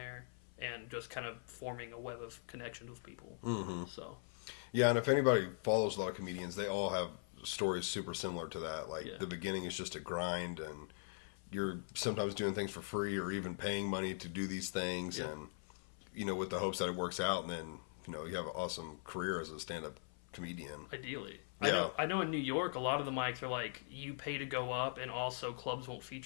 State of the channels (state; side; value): silent; right; 50 dB below the other